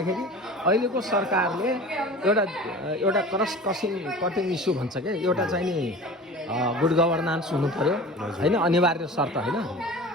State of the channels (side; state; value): both; normal; correlation 0.37